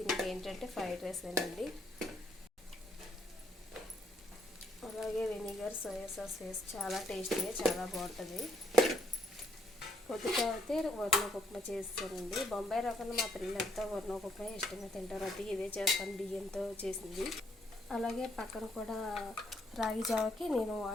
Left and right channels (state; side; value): normal; both; correlation 0.71